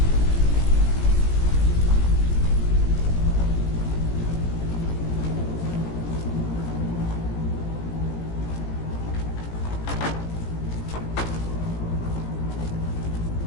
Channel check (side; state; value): right; late; 18 ms